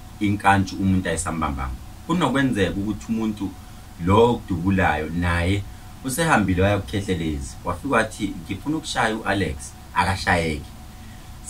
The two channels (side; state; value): both; identical; correlation 1.00